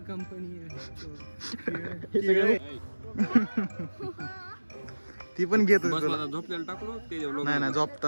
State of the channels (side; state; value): both; inverted; correlation -1.00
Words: कंपनी ती पण घेत होती तुला? झोपलेला टाकलो ते नाही नाही,